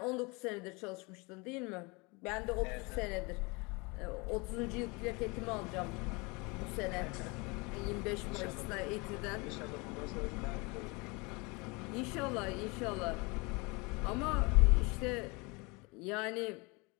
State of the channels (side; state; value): right; quieter; 27.7 dB